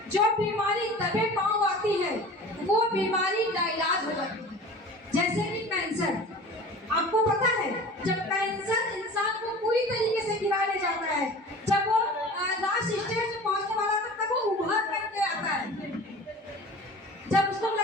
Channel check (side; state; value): both; normal; correlation 0.40